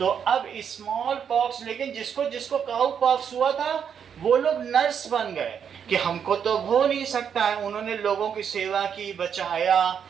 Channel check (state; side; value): quieter; left; 7.7 dB